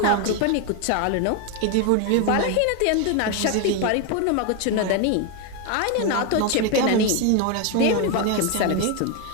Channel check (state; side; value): different; both; correlation 0.01